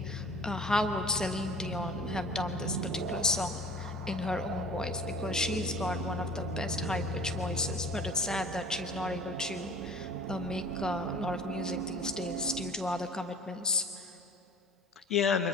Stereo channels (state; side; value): normal; both; correlation 0.43